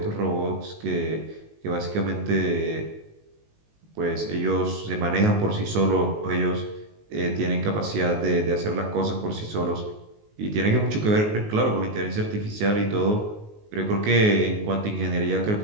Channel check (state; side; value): late; left; 19 ms